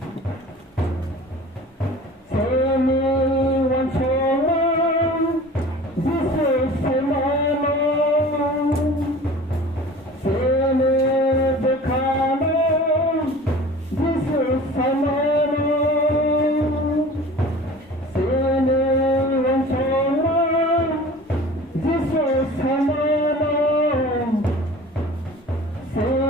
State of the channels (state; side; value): normal; both; correlation 0.42